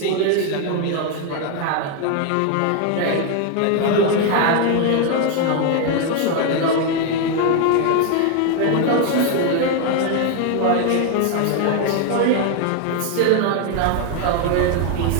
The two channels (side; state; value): both; different; correlation 0.01